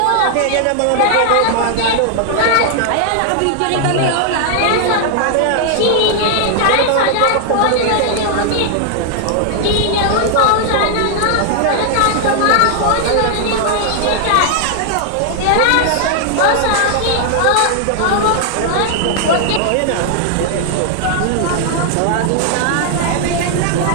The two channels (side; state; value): both; different; correlation 0.00